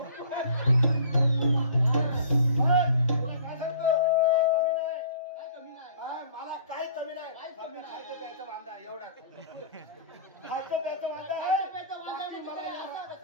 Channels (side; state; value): both; inverted; correlation -0.47